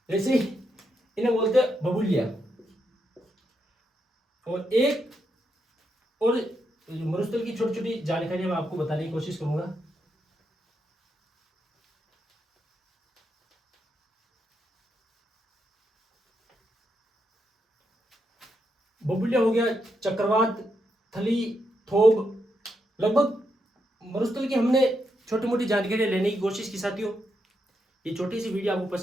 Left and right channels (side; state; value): both; normal; correlation 0.82